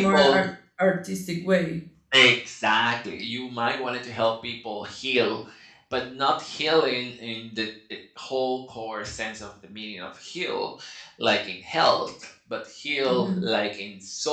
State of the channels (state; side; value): identical; both; correlation 1.00